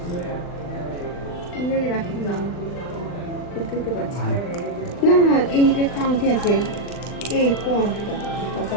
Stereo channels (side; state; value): right; late; 39 ms